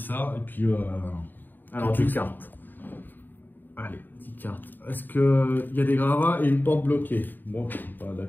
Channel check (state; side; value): late; right; 0.091 ms